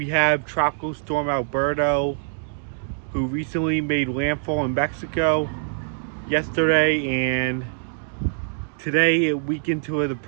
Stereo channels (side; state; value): left; silent; digital silence